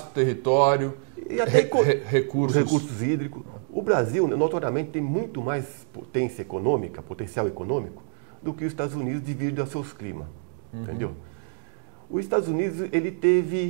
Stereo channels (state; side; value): silent; left; digital silence